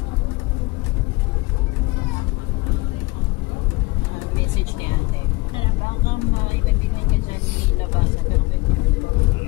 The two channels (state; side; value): quieter; right; 23.3 dB